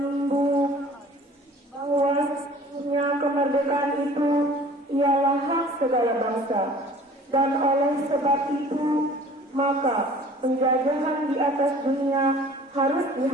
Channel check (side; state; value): both; normal; correlation 0.48